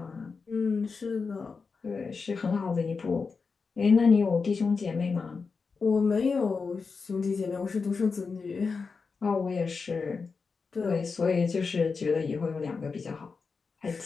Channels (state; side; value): quieter; right; 4.9 dB